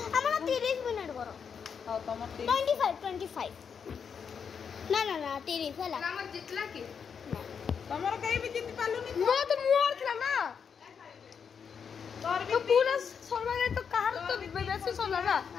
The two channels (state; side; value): quieter; right; 6.7 dB